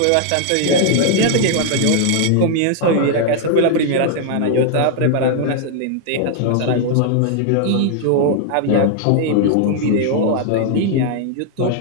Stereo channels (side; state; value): both; different; correlation 0.00